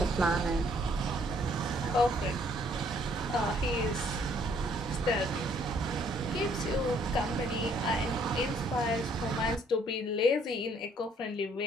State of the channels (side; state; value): both; normal; correlation 0.64